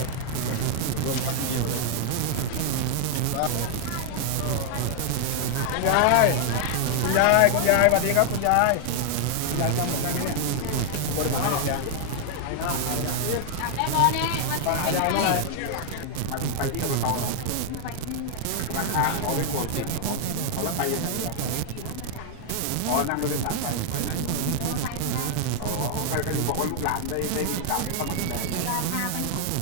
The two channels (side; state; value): both; different; correlation 0.00